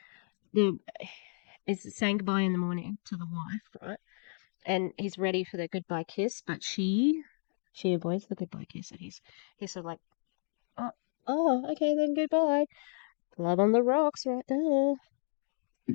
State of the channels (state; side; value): silent; right; 56 dB below the other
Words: is saying goodbye in the morning to the wife, right? And he's ready for the goodbye kiss, but she avoids the goodbye kiss, and he's sort of like, okay, then goodbye. Love on the rocks right there.